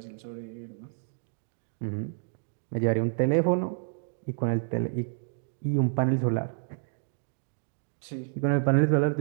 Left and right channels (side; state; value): left; silent; digital silence